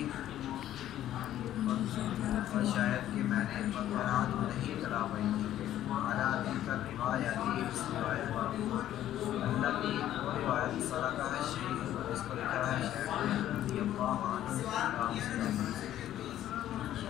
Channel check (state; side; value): quieter; right; 12.4 dB